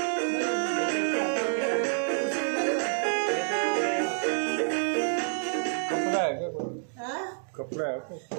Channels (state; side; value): silent; left; 59 dB below the other